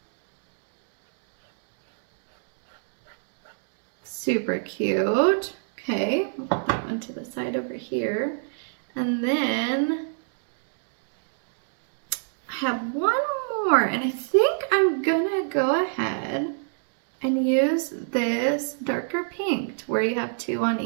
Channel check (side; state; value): left; silent; digital silence